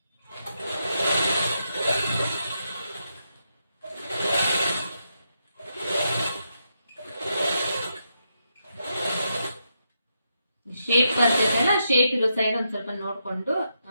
ಶೇಪ್ ಬರ್ತೈತಲ್ಲ, ಶೇಪ್ ಇರೋ ಸೈಡ್ ಒಂದ್ ಸ್ವಲ್ಪ ನೋಡ್ಕೊಂಡು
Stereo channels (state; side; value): inverted; both; correlation -0.82